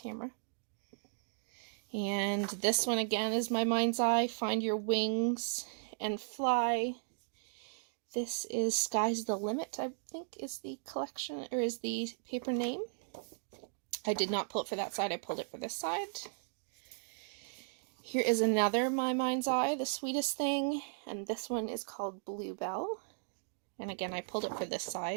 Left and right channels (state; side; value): silent; left; digital silence